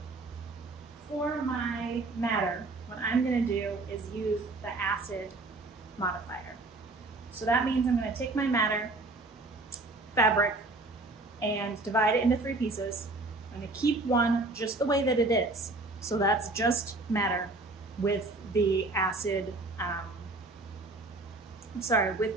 for my madder, what I'm gonna do is use the acid modifier. So that means I'm gonna take my madder fabric and divide it into 3 pieces. I'm gonna keep one just the way that it is. So that's just madder with the acid,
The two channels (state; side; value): quieter; left; 3.1 dB